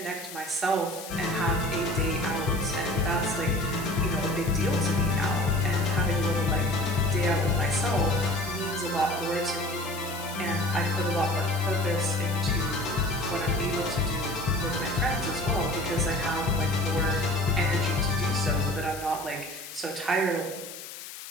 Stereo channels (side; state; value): left; noise; hiss, 12 dB below the sound